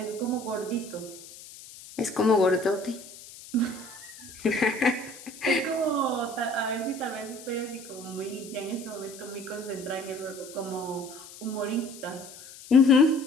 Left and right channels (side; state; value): left; noise; hiss, 17 dB below the sound